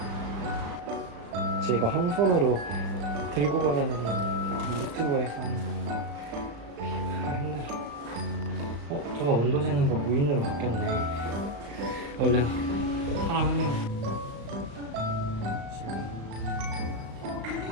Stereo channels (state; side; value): late; left; 36 ms